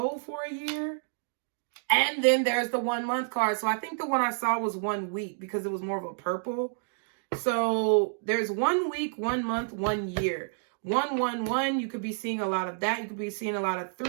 for a year. And then there's the 1 month card. So I think the one I saw was 1 week because it was more of a purple. So there's 1 week, 1 month, 1 year. 111, you could be seeing a lot of that. You could be seeing a lot of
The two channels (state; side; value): silent; left; digital silence